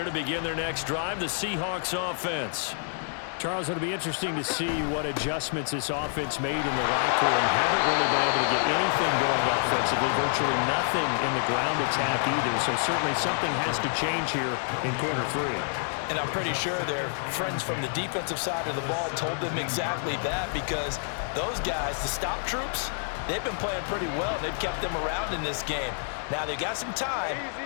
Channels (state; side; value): silent; right; 58 dB below the other